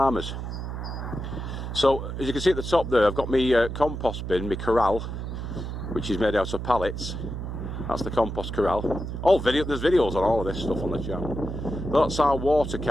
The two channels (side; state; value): right; noise; hum, 6 dB below the sound